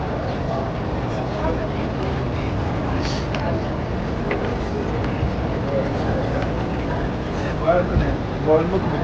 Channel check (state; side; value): identical; both; correlation 1.00